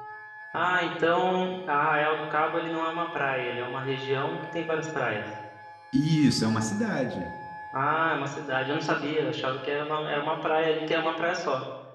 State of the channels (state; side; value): identical; both; correlation 1.00